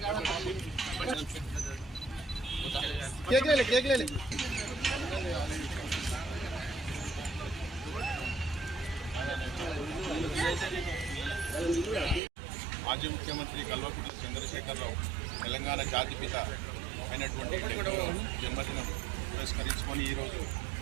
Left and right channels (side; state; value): left; drops out; at 12.2 s